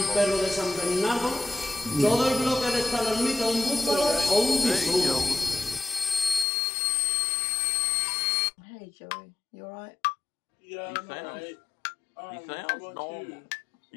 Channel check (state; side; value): drops out; right; at 6.5 s